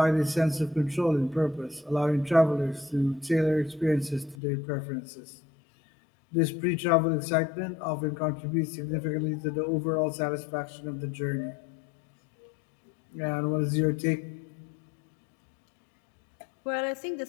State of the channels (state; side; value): drops out; right; at 4.4 s